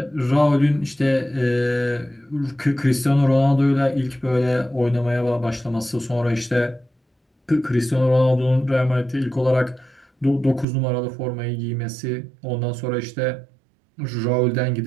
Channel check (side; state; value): left; drops out; at 10.7 s